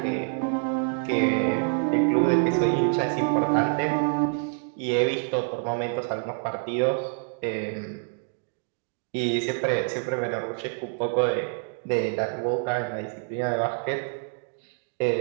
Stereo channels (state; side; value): silent; left; 57 dB below the other